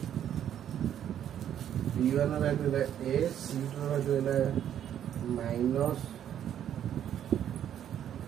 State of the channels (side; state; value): left; quieter; 10.2 dB